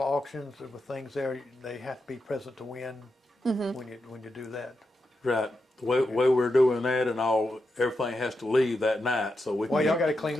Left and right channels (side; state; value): both; normal; correlation 0.87